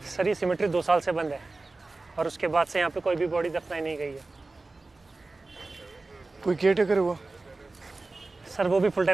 सर ये सिमेट्री 2 साल से बंद है और उसके बाद से यहाँ पे कोई भी बॉडी दफनाई नहीं गई है। कोई केयर टेकर हुआ? सर वो भी फुल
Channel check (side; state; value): left; quieter; 3.4 dB